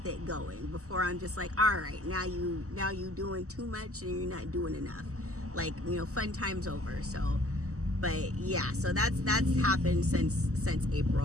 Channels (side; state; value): left; late; 0.65 ms